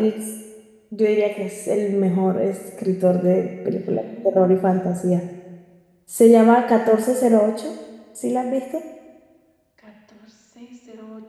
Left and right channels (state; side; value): identical; both; correlation 1.00